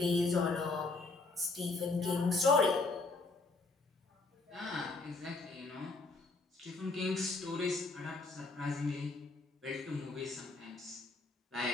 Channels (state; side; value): quieter; right; 3.6 dB